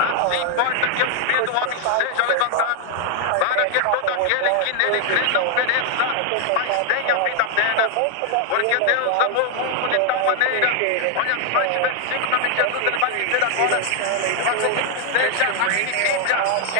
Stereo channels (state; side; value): different; both; correlation 0.00